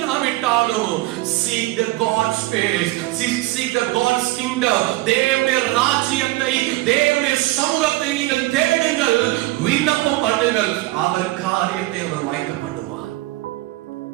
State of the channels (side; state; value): left; quieter; 18.8 dB